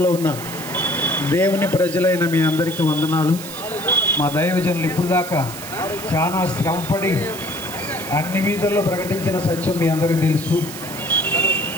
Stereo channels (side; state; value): right; noise; hiss, 12 dB below the sound